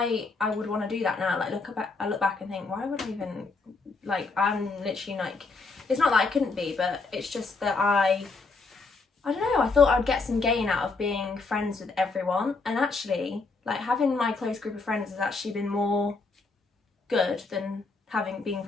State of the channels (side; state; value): right; quieter; 3.9 dB